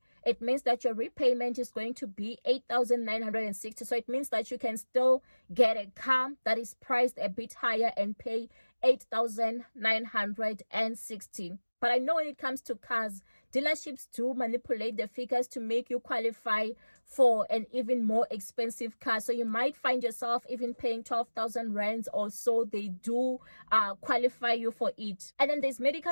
it means that your repayment is going to be 8,960. So it means that you can still get a car that is priced a bit higher and pay 8,960. But I know when it comes to cars, dealerships do manipulate the figures to make you qualify for an even more expensive car. So you might find yourself even paying 12,000 rands or so. They do qualify you for it. And then there's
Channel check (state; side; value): inverted; both; correlation -1.00